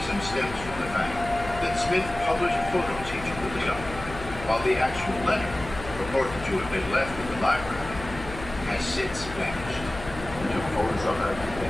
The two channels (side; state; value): left; noise; hum, 12 dB below the sound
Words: stems from the fact that Smith published photos he took of the document, while the actual letter, purported to have been left in the library, has since vanished. We took photos of it,